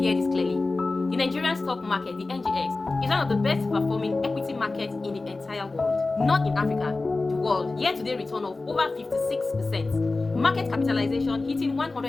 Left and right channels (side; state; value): right; quieter; 3.4 dB